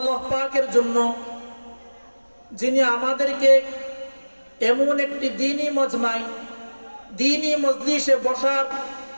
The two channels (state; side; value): inverted; both; correlation -1.00